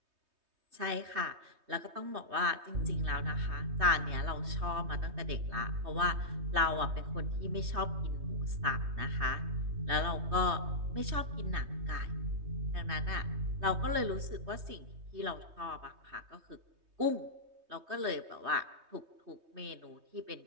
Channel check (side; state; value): left; late; 3.2 ms